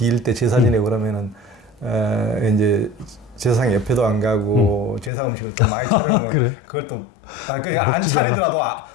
때 제사 지내고 그러면은 이제 제사상 옆에도 안 가고 제사 음식을 또 많이 차려놓으면 그걸 또 안 차리더라도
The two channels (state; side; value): drops out; right; at 5.1 s